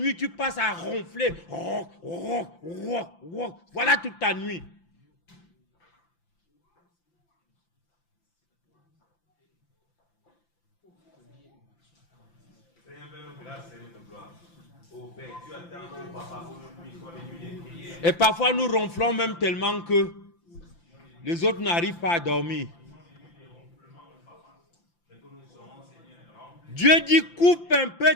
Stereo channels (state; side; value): late; right; 5.9 ms